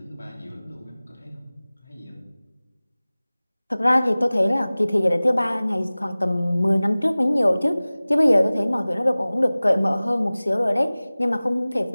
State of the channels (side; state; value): both; inverted; correlation -0.99